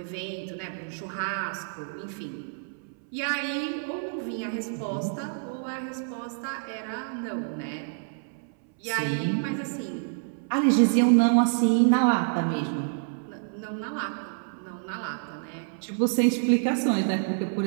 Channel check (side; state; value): left; silent; 59 dB below the other